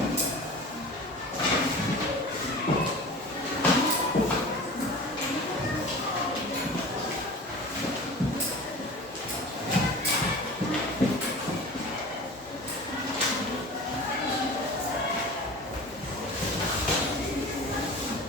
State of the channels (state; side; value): normal; both; correlation 0.37